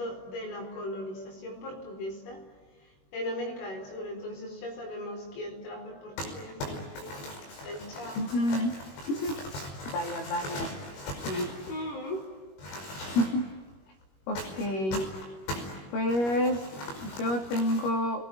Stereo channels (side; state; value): right; late; 21 ms